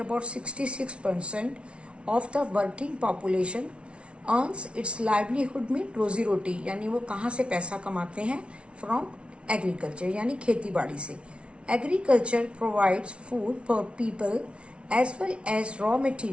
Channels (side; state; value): left; late; 0.059 ms